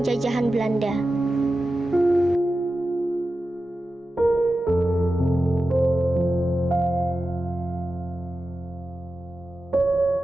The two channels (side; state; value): both; normal; correlation 0.93